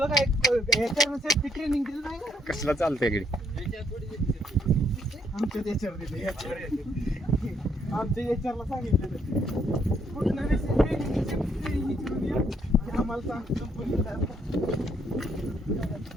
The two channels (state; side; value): normal; both; correlation 0.71